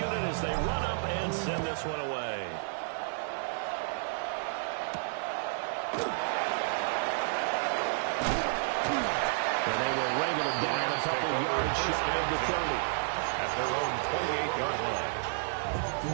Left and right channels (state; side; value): silent; left; digital silence